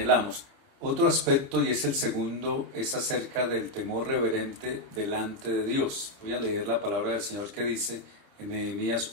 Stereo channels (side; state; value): left; late; 30 ms